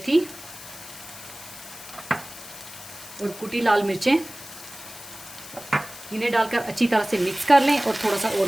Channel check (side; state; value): left; noise; hiss, 15 dB below the sound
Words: और कुटी लाल मिर्चें, इन्हें डालकर अच्छी तरह से मिक्स कर लें और थोड़ा सा और